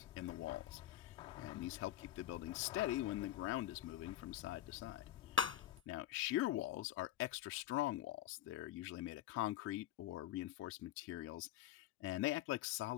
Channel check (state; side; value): quieter; right; 13.2 dB